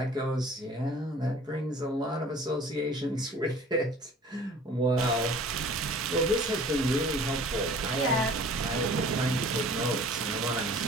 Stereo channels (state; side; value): normal; both; correlation 0.48